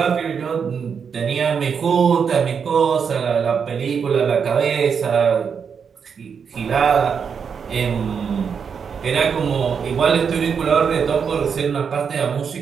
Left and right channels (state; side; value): quieter; left; 6.5 dB